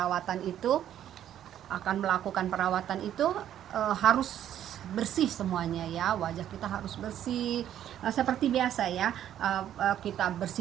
itu harus bersih semuanya ya. Wajah kita harus bersih seperti biasa ya. Kita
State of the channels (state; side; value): quieter; left; 10.9 dB